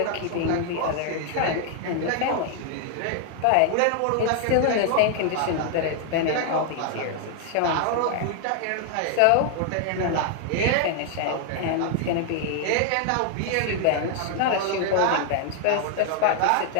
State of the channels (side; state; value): both; different; correlation 0.00